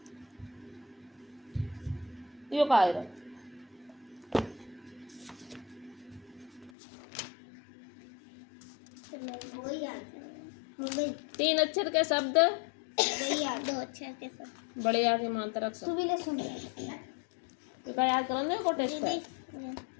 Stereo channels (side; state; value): right; drops out; at 6.7 s